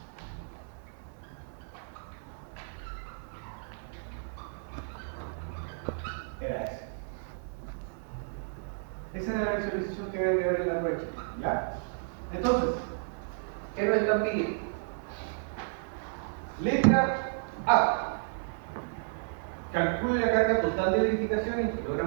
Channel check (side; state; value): left; silent; 56 dB below the other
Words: era ese. Esa era la visualización que había que ver en la brecha. ¿Ya? Entonces, ¿qué nos están pidiendo? Letra A. Calcule la carga total de edificación en